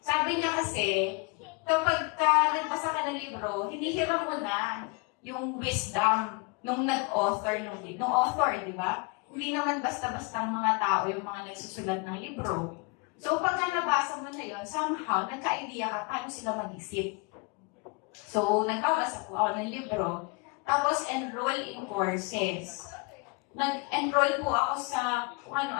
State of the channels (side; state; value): right; quieter; 29.0 dB